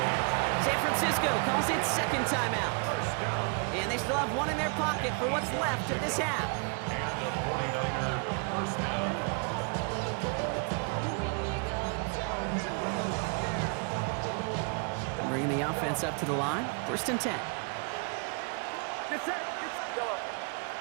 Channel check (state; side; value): quieter; left; 37.1 dB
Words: San Francisco calls it 2nd timeout. And they still have 1 in their pocket for what's left of this half. And the 49er first down. Bringing the offense up to the line. 1st and 10. Get set, get yellow.